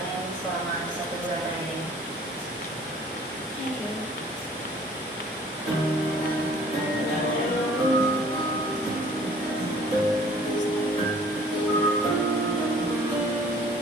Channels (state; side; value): normal; both; correlation 0.53